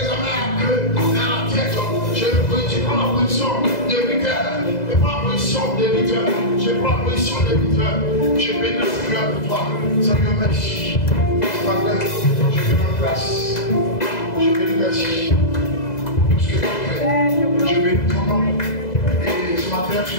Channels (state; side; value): late; right; 2.0 ms